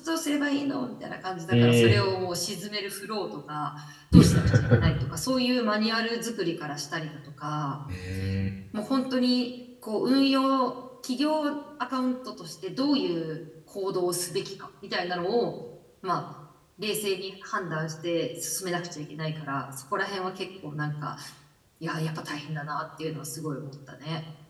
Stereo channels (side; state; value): both; identical; correlation 1.00